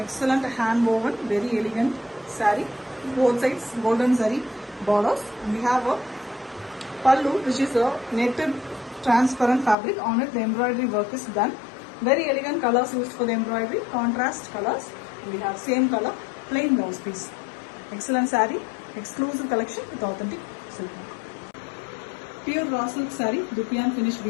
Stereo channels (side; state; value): right; drops out; at 9.8 s